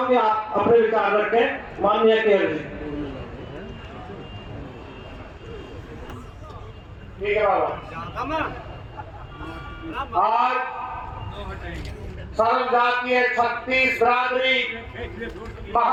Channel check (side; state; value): both; identical; correlation 1.00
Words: कि आप अपने विचार रखें। माननीय केयर जी। ठीक है बाबा। आज सर्वजातीय 36 बिरादरी